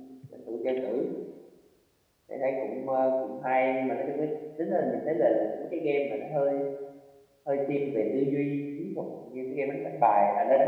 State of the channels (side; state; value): both; identical; correlation 1.00